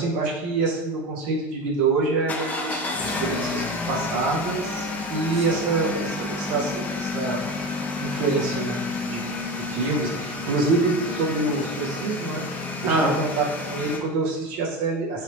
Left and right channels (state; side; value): normal; both; correlation 0.25